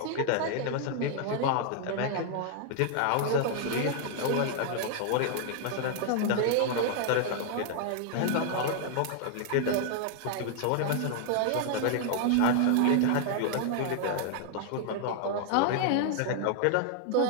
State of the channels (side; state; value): both; different; correlation 0.00